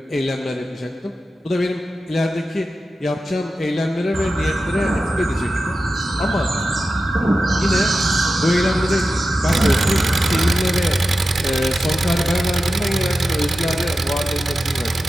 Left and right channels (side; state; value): both; normal; correlation 0.92